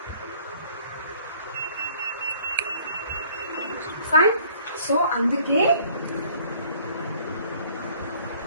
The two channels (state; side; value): inverted; both; correlation -0.57